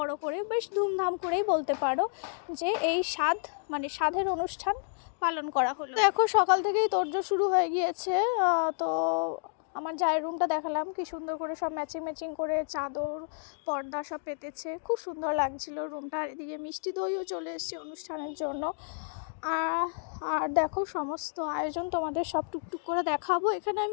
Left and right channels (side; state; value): right; silent; digital silence